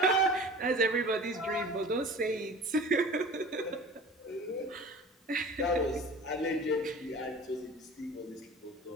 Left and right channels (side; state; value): both; normal; correlation 0.41